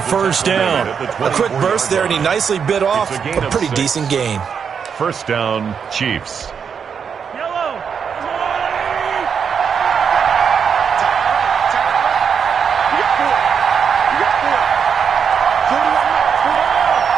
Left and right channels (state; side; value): quieter; left; 6.8 dB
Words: down. A quick burst there, and he nicely bit off a pretty decent gain. First down, Chiefs.